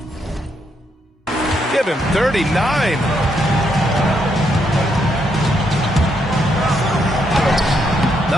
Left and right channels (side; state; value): both; normal; correlation 0.77